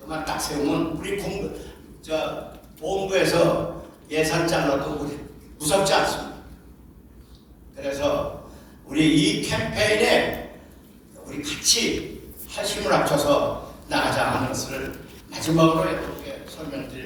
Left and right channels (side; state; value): both; identical; correlation 1.00